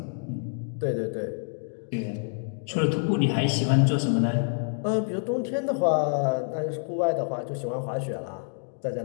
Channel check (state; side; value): silent; right; 60 dB below the other